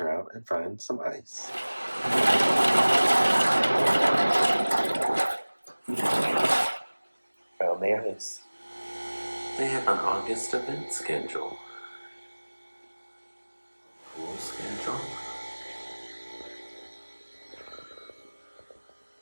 out and find some ice. Found the ice. They have an August event schedule. Full schedule.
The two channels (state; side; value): inverted; both; correlation -1.00